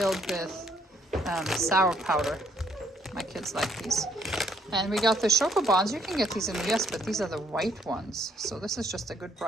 with sour powder. My kids like these. And we got the Chocobons. You can get these in the US, but these are the white ones. So this is just a good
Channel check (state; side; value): normal; both; correlation 0.68